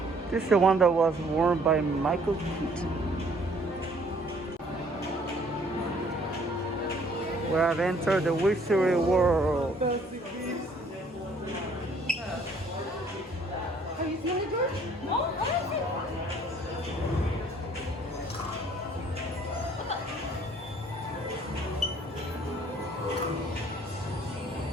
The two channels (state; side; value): normal; both; correlation 0.60